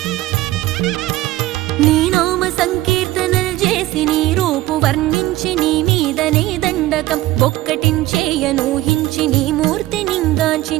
నీ నామ సంకీర్తనలు చేసి నీ రూపు వర్ణించి నీ మీదనే దండకం ఒక్కటించేయనూహించి నీ మూర్తి నింగాంచి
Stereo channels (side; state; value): left; quieter; 16.5 dB